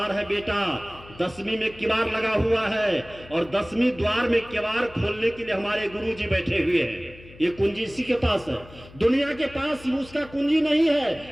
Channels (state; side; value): noise; left; hum, 21 dB below the sound